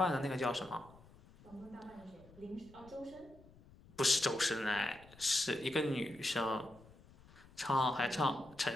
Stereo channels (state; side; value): noise; left; rumble, 23 dB below the sound